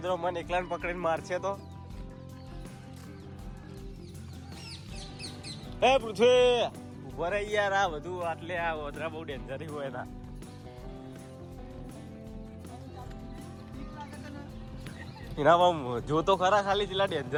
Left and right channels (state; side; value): identical; both; correlation 1.00